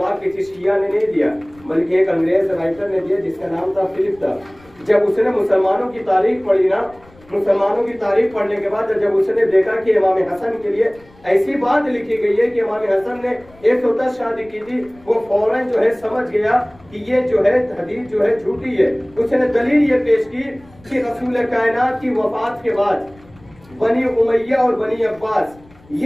किसी शिया ने नहीं दिया बल्कि एक अंग्रेज राइटर ने दिया जिसका नाम था फिलिप था। जब उसने मुसलमानों की तारीख पढ़ी ना, मुसलमानों की तारीख पढ़ने के बाद जब उसने देखा कि इमाम हसन के लिए ऐसी बात लिखी गई है कि इमाम हसन ने 110 शादी की थी, वो फौरन जो है समझ गया कि ये जो है हदीस जो है झूठी है। उसने दलील ये पेश की कि रसूल कायनात की वफात के बाद बनी उमैया और बनी अब्बास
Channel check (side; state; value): left; noise; rumble, 26 dB below the sound